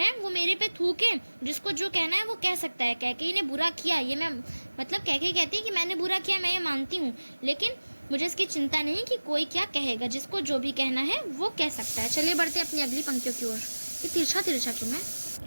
वो मेरे पे थूके, जिसको जो कहना है वो कह सकता है। कैकेयी ने बुरा किया, ये मैं मतलब कैकेयी कहती है कि मैंने बुरा किया, मैं ये मानती हूँ, लेकिन मुझे इसकी चिंता नहीं कि कोई क्या कहेगा, जिसको जो भी कहना है वो कह सकता है। चलिए बढ़ते अपनी अगली पंक्तियों की ओर। ये तिरछा क्यों है।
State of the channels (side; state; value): both; inverted; correlation -1.00